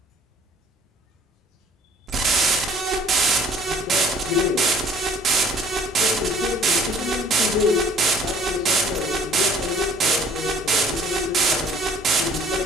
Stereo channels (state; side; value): normal; both; correlation 0.55